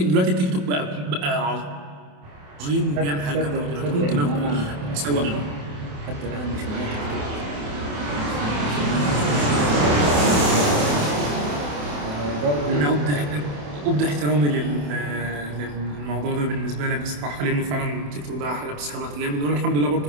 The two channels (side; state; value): left; late; 27 ms